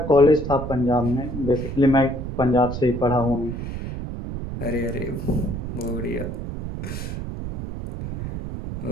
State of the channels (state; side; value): noise; right; rumble, 6 dB below the sound